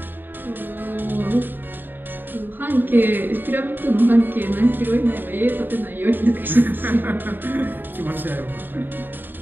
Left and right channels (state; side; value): late; left; 0.093 ms